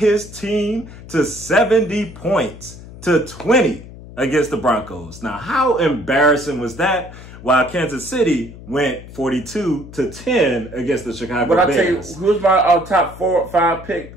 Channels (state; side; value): noise; left; hum, 16 dB below the sound